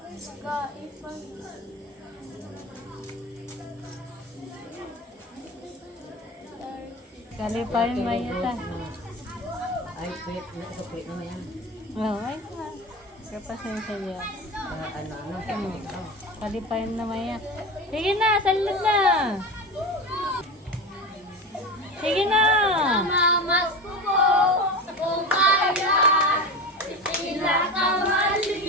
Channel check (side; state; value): both; normal; correlation 0.26